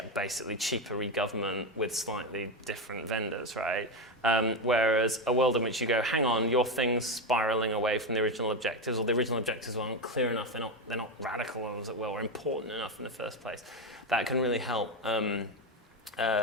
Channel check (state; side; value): normal; both; correlation 0.13